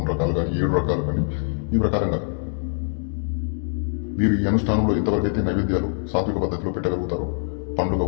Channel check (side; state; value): right; silent; digital silence